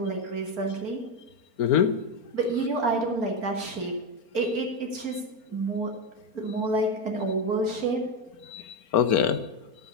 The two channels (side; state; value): right; late; 4.4 ms